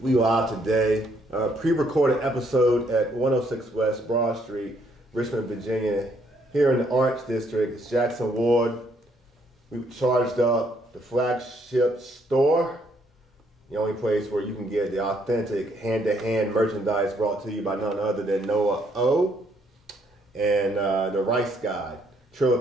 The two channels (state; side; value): normal; both; correlation 0.69